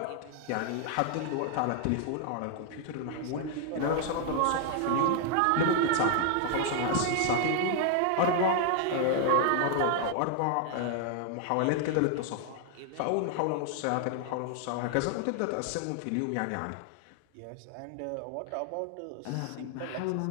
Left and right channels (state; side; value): different; both; correlation 0.00